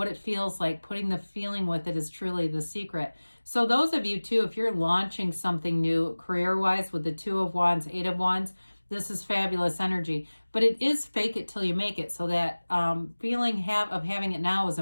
it feels like. Putting the feeling with it is truly the secret. So those of you too, if you're launching something new career-wise with the 2 of Wands, 8 of Wands, this is fabulous energy. But it is fake it till you make it. So that feeling of having it now is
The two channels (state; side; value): inverted; both; correlation -1.00